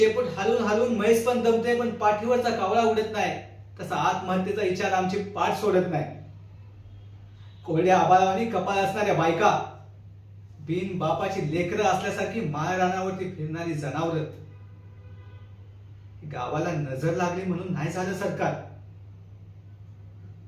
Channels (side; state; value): both; identical; correlation 1.00